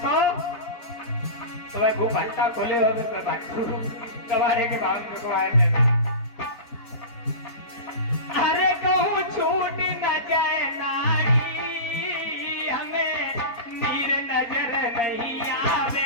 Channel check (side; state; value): right; late; 3.9 ms